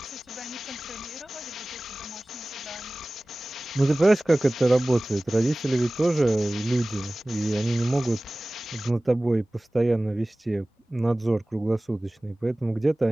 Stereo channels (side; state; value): both; normal; correlation 0.98